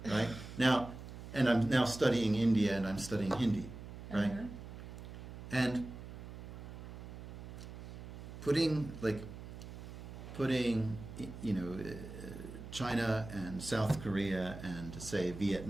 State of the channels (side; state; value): right; noise; hum, 11 dB below the sound